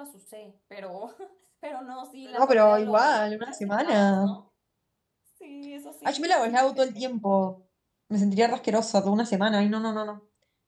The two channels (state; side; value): identical; both; correlation 1.00